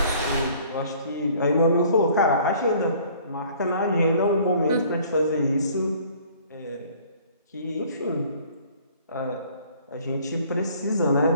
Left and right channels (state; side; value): inverted; both; correlation -0.55